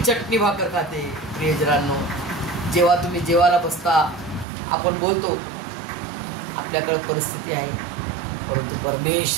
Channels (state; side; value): drops out; left; at 4.5 s